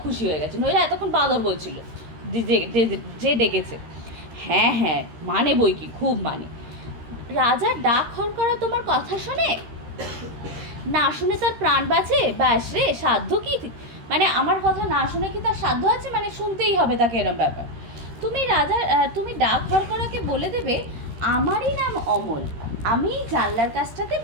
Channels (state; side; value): late; left; 13 ms